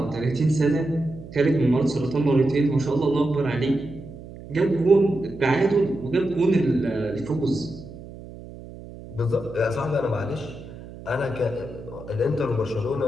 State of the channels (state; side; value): noise; right; hum, 15 dB below the sound